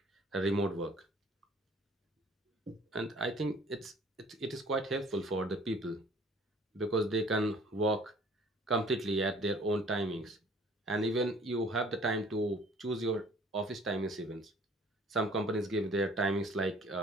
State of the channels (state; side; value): normal; both; correlation 0.54